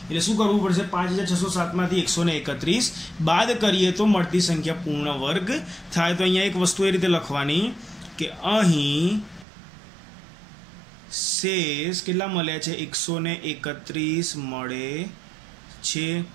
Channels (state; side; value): drops out; left; at 9.5 s